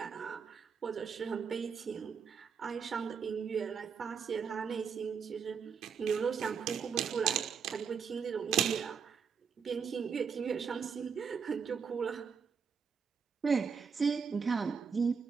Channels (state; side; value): quieter; left; 6.3 dB